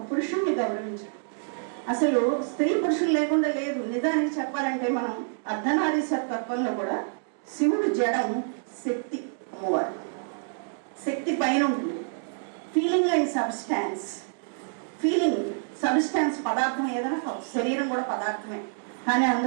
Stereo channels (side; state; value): left; silent; digital silence